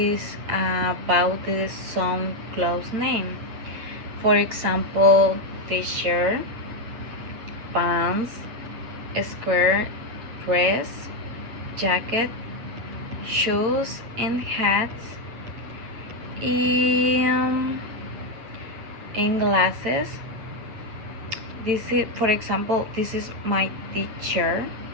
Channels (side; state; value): left; late; 9.0 ms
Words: about the some clothes name. For example, t-shirt, pants, skirt, dress, jacket, shoes, and hats, and, and glasses. This is, for example, this is my t-shirt.